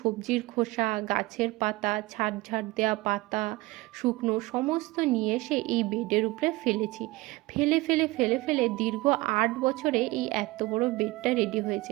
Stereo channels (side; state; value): left; quieter; 21.0 dB